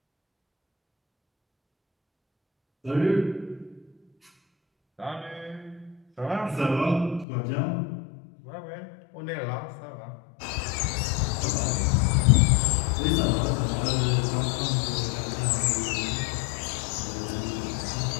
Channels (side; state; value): right; drops out; at 7.2 s